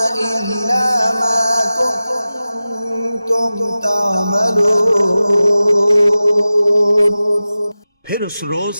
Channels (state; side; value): inverted; both; correlation -0.95